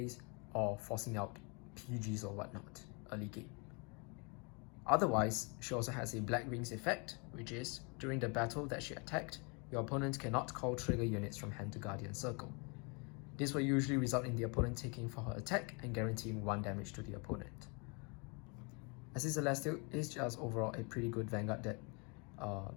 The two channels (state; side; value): quieter; right; 32.7 dB